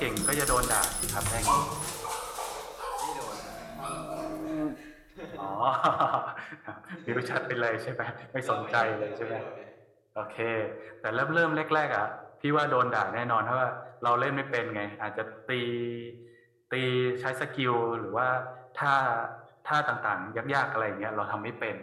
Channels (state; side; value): identical; both; correlation 1.00